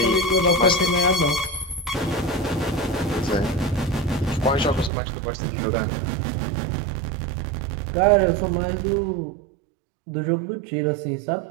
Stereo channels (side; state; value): left; drops out; at 4.9 s